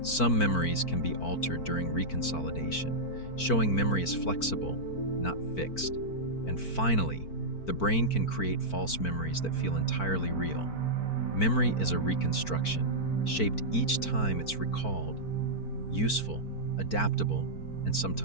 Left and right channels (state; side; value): late; right; 4.5 ms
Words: Some memories can be altered during reconsolidation, showing memory is flexible, not fixed. And finally, the brain can create false memories that feel entirely real. Memory is a reconstruction, shaped each time it's recalled, useful, adaptable, and